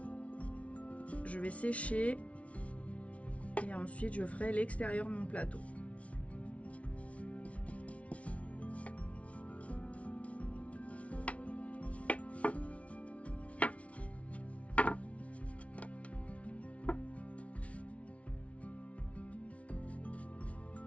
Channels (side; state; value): right; late; 0.064 ms